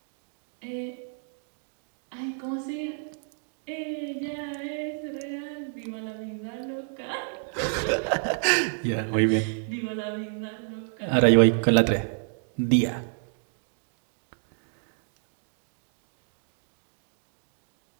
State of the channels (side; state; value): left; silent; 58 dB below the other